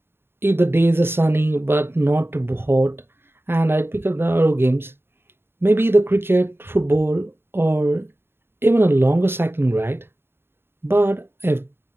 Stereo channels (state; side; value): late; left; 0.11 ms